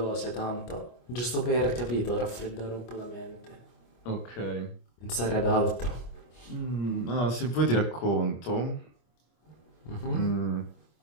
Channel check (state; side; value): late; right; 25 ms